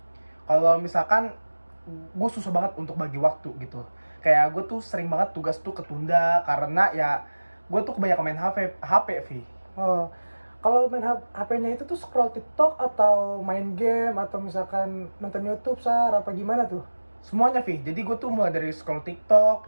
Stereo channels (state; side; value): inverted; both; correlation -1.00